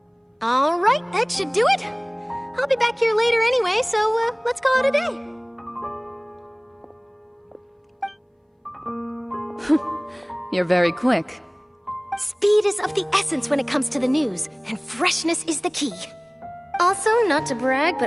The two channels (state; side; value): identical; both; correlation 1.00